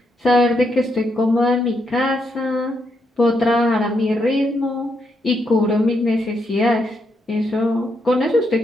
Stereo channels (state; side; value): normal; both; correlation 0.79